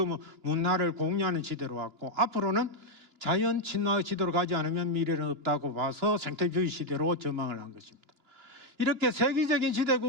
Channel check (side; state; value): left; late; 2.9 ms